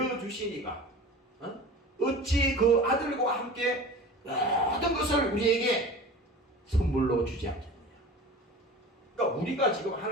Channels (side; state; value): both; normal; correlation 0.37